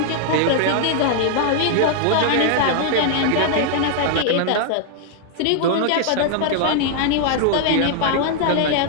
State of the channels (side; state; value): both; different; correlation 0.00